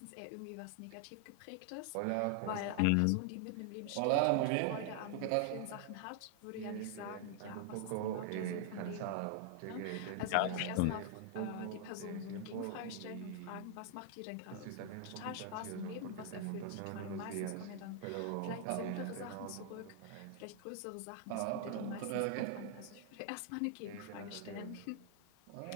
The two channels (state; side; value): different; both; correlation 0.00